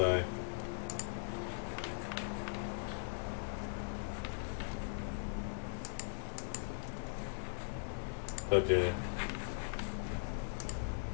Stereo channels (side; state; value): right; silent; digital silence